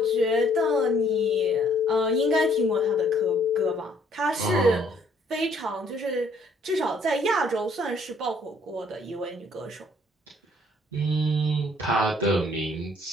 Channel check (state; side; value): normal; both; correlation 0.64